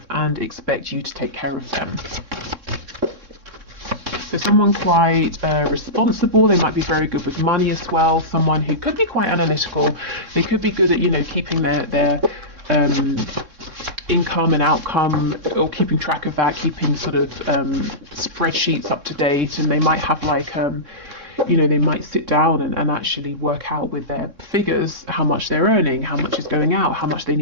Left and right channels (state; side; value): late; left; 3.6 ms